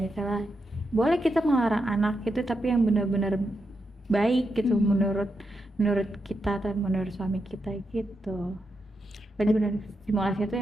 misalnya boleh kita melarang anak itu tapi yang benar-benar baik gitu menurut kita atau menurut suami kita gitu. Benar-benar stimulasinya tuh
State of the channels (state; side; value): normal; both; correlation 0.85